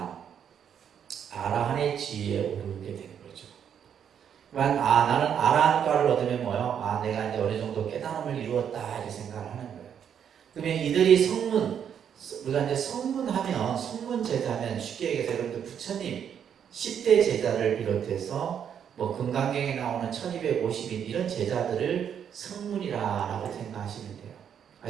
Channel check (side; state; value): left; quieter; 8.4 dB